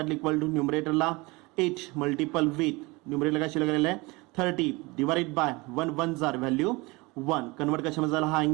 इक्वल टू न्यूमरेटरला 8 मल्टिपल विथ न्यूमरेटरला काय शिल्लक राहिलं आहे 30 डिवाइडेड बाय 1 1 जार व्हॅल्यू 1. कन्वर्ट कशामध्ये झाला हा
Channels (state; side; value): quieter; left; 24.5 dB